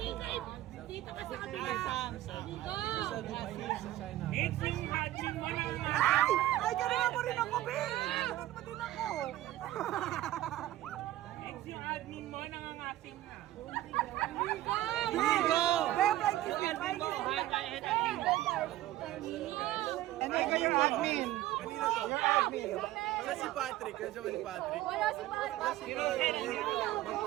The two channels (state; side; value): quieter; left; 14.8 dB